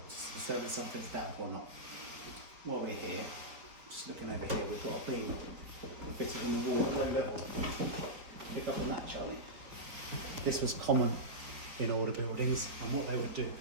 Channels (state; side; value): late; left; 4.3 ms